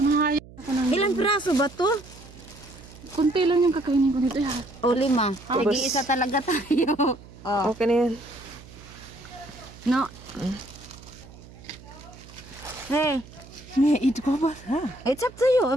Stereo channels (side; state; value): right; noise; hum, 19 dB below the sound